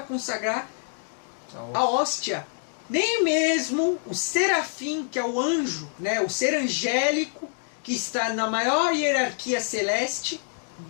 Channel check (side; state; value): right; silent; digital silence